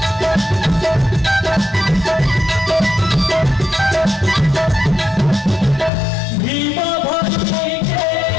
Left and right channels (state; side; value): drops out; right; at 5.9 s